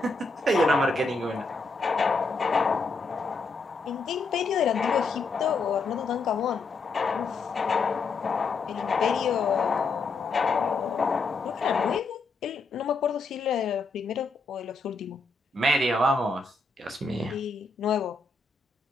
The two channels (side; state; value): right; quieter; 3.8 dB